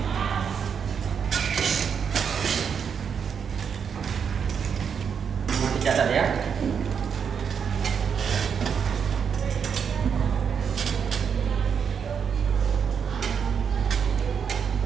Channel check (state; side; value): quieter; left; 7.0 dB